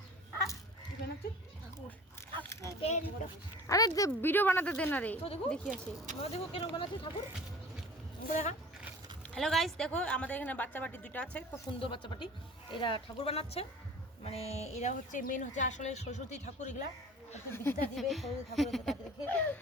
কি বানাচ্ছিস? আরে ভিডিও বানাতে দে না রে, তো দেখো দেখি আসি। দেখো কেন বানাচ্ছিস ঠাকুর দেখা। হ্যালো গাইস, দেখো আমাদের এখানে বাচ্চা পাটি দুটো আছে, খুব সুন্দর বাচ্চা পাটি। এরা ঠাকুর বানাচ্ছে, মানে এরা হচ্ছে মেন হচ্ছে আসলে সরস্বতী ঠাকুর। এগুলা একটু বিদ্যা দিবে সরস্বতী ঠাকুরের তাকে দেখে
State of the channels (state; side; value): normal; both; correlation 0.43